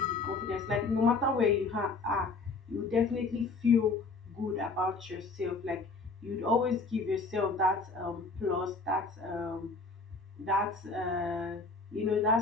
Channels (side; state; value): right; quieter; 3.9 dB